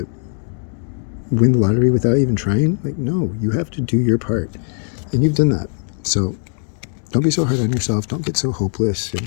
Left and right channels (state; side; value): silent; right; 56 dB below the other